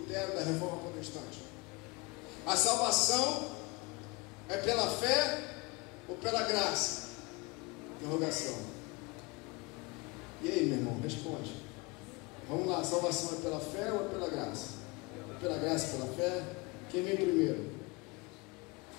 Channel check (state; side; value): quieter; right; 26.1 dB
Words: da Reforma Protestante. A salvação é pela fé ou pela graça? Interrogação. E aí, meu irmão, responde. Vamos lá, a salvação é pela fé ou é pela graça? É pela graça, pela fé? Quem vem primeiro?